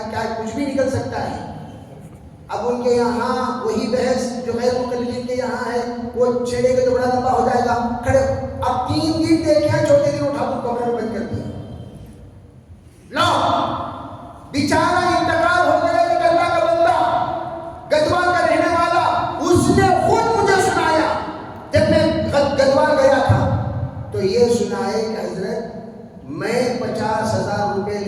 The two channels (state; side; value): identical; both; correlation 1.00